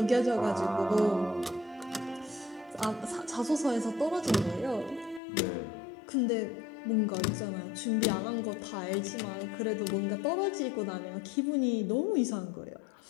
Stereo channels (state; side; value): drops out; right; at 5.2 s